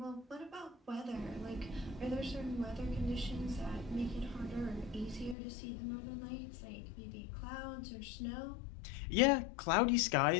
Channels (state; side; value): drops out; right; at 5.4 s